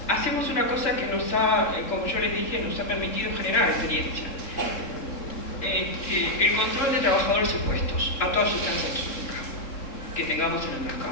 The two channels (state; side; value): late; right; 3.6 ms